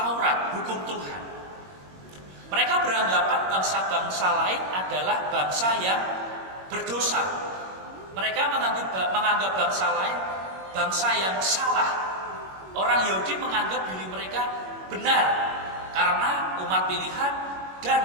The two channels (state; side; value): late; left; 21 ms